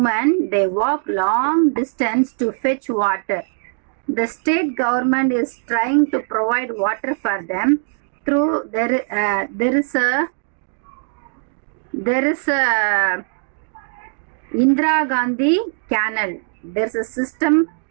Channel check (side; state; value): left; silent; 66 dB below the other